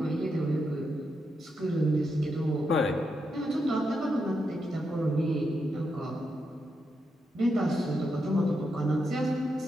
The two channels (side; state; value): both; normal; correlation 0.84